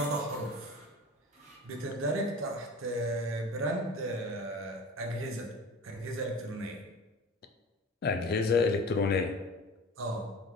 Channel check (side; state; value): both; normal; correlation 0.37